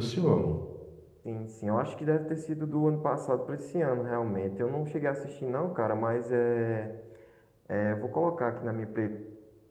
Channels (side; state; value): both; identical; correlation 1.00